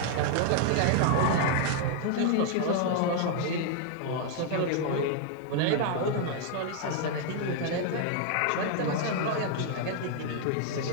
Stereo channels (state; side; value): different; both; correlation 0.00